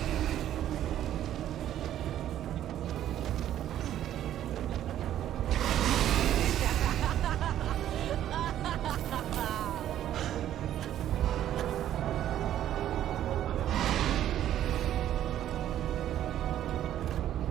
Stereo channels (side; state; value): left; quieter; 11.7 dB